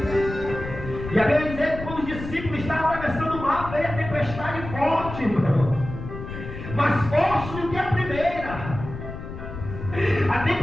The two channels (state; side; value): noise; left; rumble, 9 dB below the sound